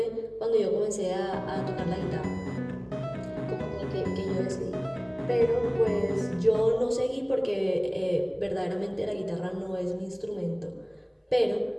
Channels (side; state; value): both; identical; correlation 1.00